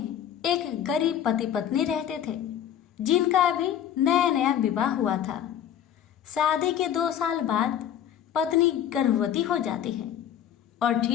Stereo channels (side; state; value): right; quieter; 9.9 dB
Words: एक गरीब पति पत्नी रहते थे जिनका अभी नया नया विवाह हुआ था। शादी के 2 साल बाद पत्नी गर्भवती हो जाती है और